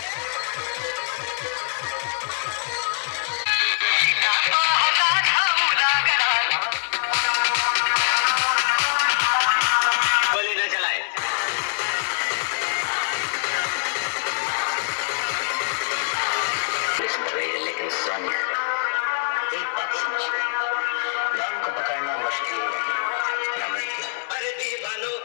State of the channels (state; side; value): silent; right; digital silence